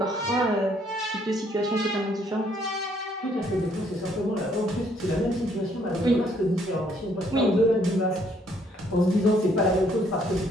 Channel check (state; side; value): normal; both; correlation 0.67